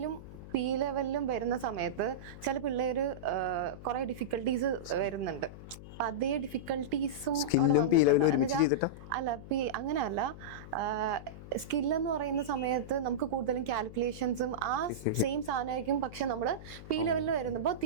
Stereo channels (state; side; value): noise; left; hum, 14 dB below the sound